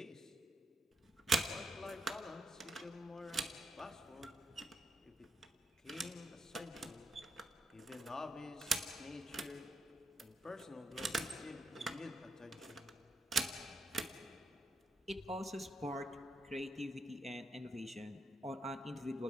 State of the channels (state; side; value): normal; both; correlation 0.79